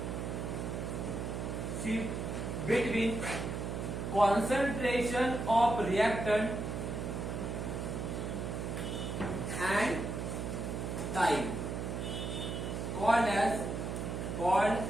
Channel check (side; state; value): right; noise; hum, 3 dB below the sound